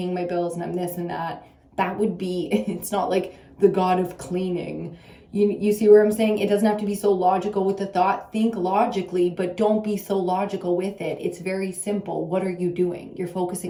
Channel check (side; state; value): both; identical; correlation 1.00